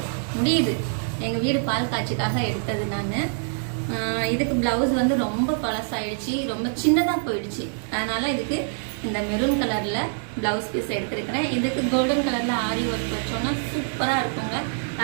முடியுது. எங்க வீடு பால் காட்சிக்காக எடுத்தது நான். இதுக்கு பிளவுஸ் வந்து ரொம்ப பழசாயிடுச்சு, ரொம்ப சின்னதாக போயிடுச்சு. அதனால இதுக்கு இந்த மெரூன் கலர்ல பிளவுஸ் பீஸ் எடுத்திருக்கிறேன். இதுக்கு கோல்டன் கலர்ல ஆரி ஒர்க் வச்சோம்னா சூப்பரா இருக்குங்க.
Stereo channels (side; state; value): left; silent; digital silence